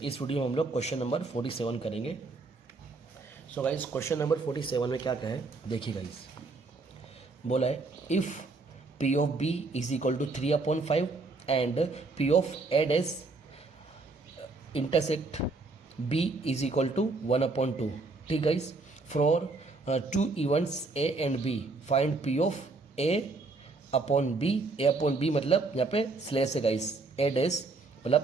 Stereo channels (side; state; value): left; quieter; 3.7 dB